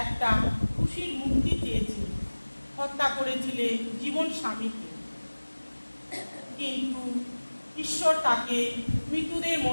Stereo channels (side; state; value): both; inverted; correlation -1.00